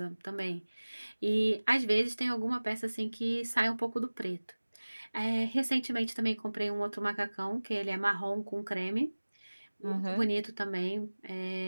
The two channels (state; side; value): inverted; both; correlation -1.00